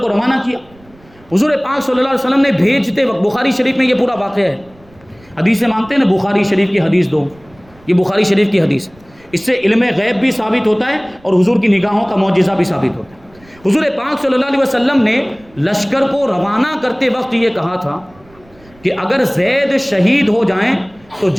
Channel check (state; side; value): noise; right; rumble, 28 dB below the sound